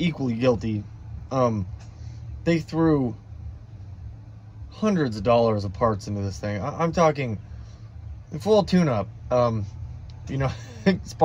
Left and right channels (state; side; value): identical; both; correlation 1.00